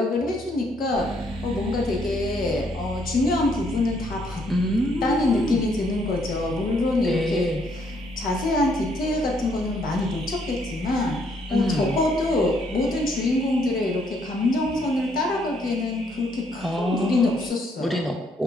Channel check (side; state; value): both; normal; correlation 0.70